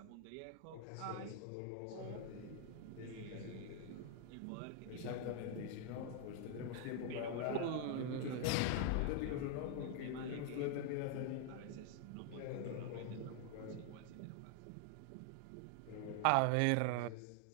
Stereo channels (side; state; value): both; different; correlation 0.00